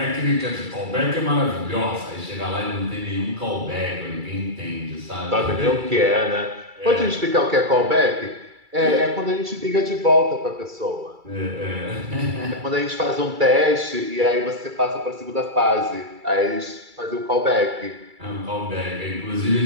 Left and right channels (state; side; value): late; left; 2.3 ms